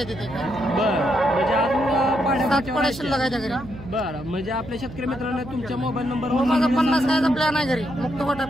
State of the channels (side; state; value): right; noise; hum, 14 dB below the sound